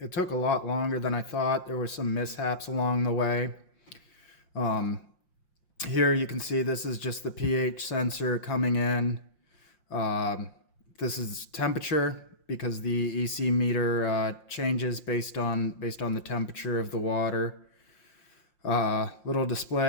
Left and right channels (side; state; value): right; late; 5.7 ms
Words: took a lot longer than I thought. There were some mishaps along the way. Here you can see this is just the pH sensor coming in. This is temperature because the EC meter changes based on the temperature of the water. Little